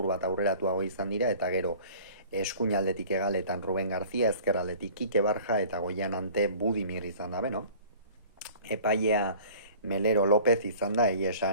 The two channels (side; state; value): both; inverted; correlation -0.47